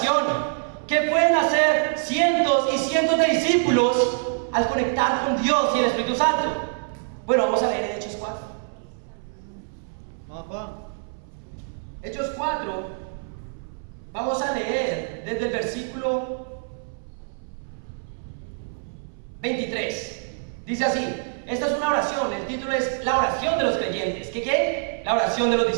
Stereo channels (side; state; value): left; silent; 62 dB below the other